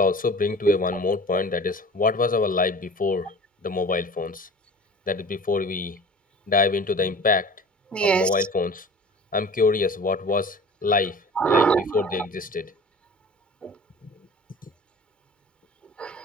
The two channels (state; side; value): normal; both; correlation 0.41